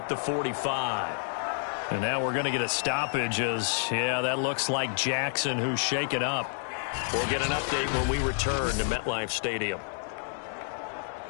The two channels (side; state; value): right; silent; digital silence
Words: the 45. And now we're going to get a stoppage as, yeah, that looks like Jackson who's shaken up. We'll get an update when we return to MetLife Stadium.